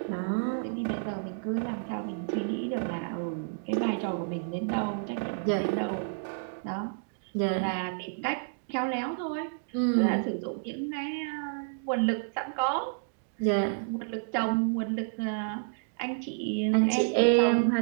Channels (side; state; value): left; silent; digital silence